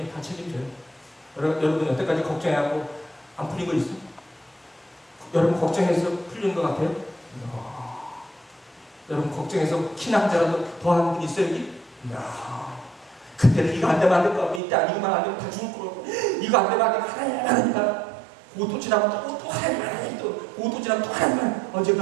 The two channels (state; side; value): drops out; left; at 14.6 s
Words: 다 책임져요. 여러분 여태까지 걱정해갖고 안 풀린 거 있어요? 여러분 걱정해서 풀린 것 같아요? 여러분 걱정해서 신앙자라도 더하는 분 있어요 여기? 그때는 이거 안 되면 안 될 것 같고 이때 이거만 안 되면 다 죽을 거고 이거 안 되면 안 되면 하나님 고도 지나면 또 하나님 또 고도 지나면 또 하나님